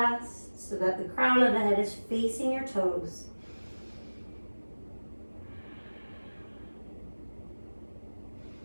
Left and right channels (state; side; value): inverted; both; correlation -1.00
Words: so that the crown of the head is facing your toes.